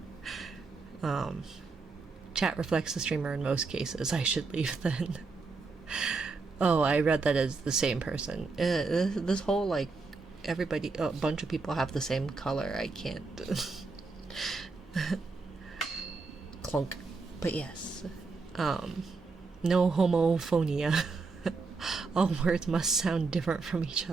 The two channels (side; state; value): left; quieter; 4.2 dB